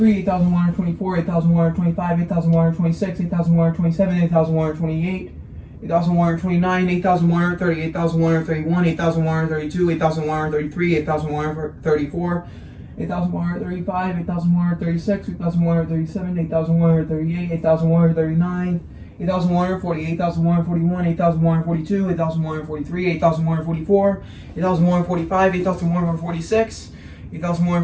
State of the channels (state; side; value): identical; both; correlation 1.00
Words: 8124, 8125, 8126, 8127, 8128, 8129, 8130, 8131, 8132, 8133, 8134, 8135, 8136, 8137, 8138, 8139, 8140, 8141, 8142, 8143, 8144, 8145, 8146,